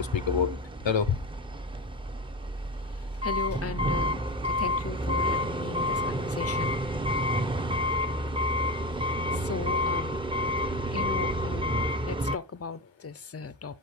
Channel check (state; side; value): normal; both; correlation 0.22